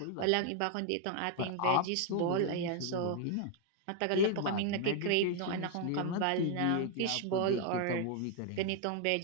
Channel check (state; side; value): different; both; correlation 0.00